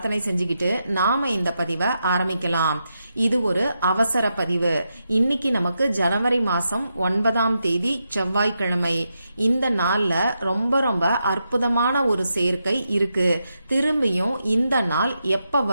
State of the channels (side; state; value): both; inverted; correlation -0.86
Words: செஞ்சுக்கிட்டு நாம இந்த பதிவை ஆரம்பிக்கலாம். இது ஒரு அவசர பதிவு. இன்னைக்கு நமக்கு ஜனவரி மாசம் 9ஆம் தேதி செவ்வாய்க்கிழமை. இந்த நாள்ல ரொம்ப ரொம்ப அற்புதமான ஒரு சேர்க்கை இருக்கு. திரும்பியும் இந்த நாள் எப்ப